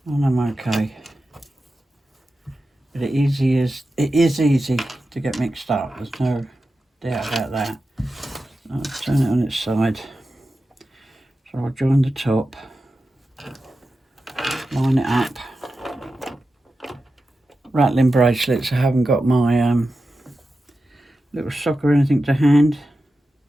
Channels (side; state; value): both; normal; correlation 0.92